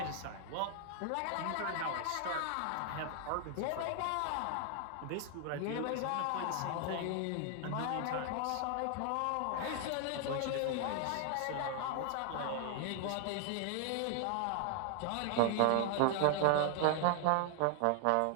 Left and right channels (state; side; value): different; both; correlation 0.00